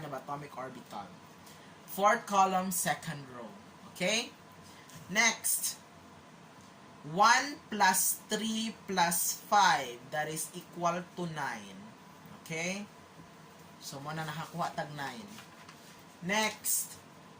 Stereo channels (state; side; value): identical; both; correlation 1.00